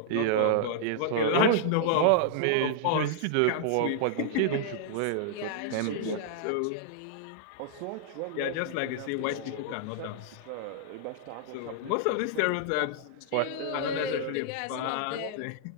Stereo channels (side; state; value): both; different; correlation -0.01